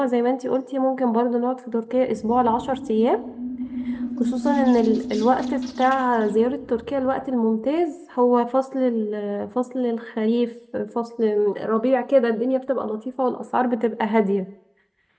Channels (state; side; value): identical; both; correlation 1.00